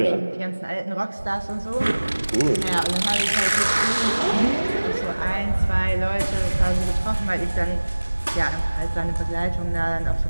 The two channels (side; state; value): both; inverted; correlation -1.00